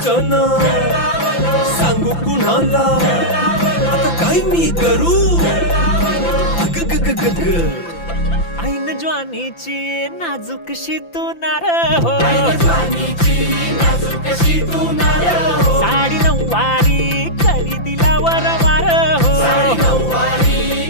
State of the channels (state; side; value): late; right; 5.9 ms